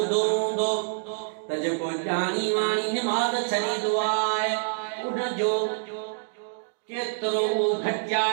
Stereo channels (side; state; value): left; silent; digital silence